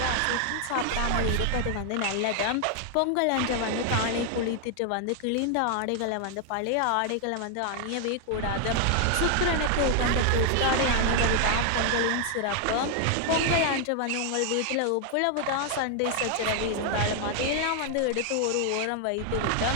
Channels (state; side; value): different; both; correlation 0.00